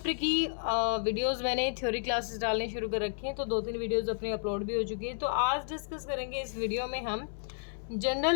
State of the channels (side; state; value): right; silent; 57 dB below the other